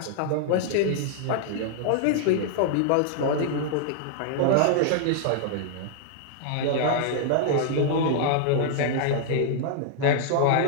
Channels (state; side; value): different; both; correlation -0.01